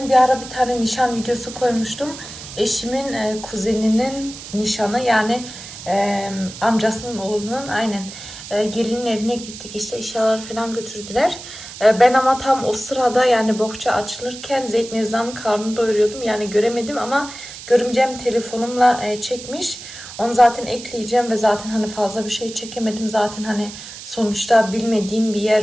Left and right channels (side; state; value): right; noise; hiss, 13 dB below the sound